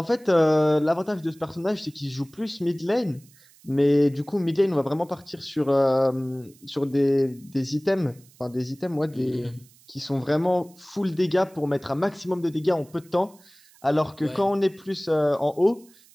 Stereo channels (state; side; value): noise; right; hiss, 28 dB below the sound